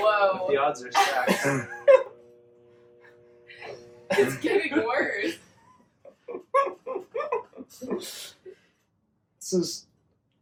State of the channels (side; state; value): both; identical; correlation 1.00